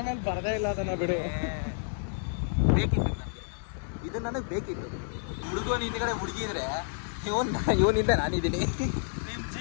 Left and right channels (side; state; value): right; silent; digital silence